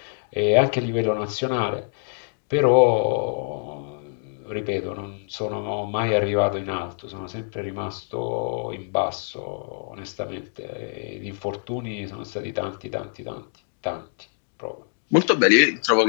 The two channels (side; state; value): right; silent; 62 dB below the other